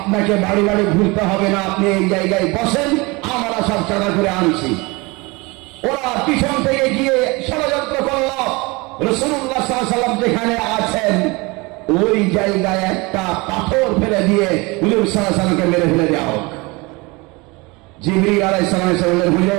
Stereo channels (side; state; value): left; quieter; 25.2 dB